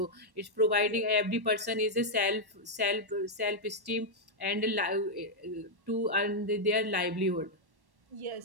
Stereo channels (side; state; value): left; late; 1.1 ms